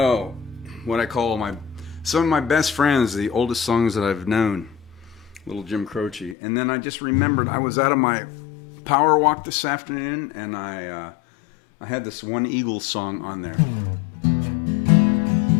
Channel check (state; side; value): drops out; right; at 6.4 s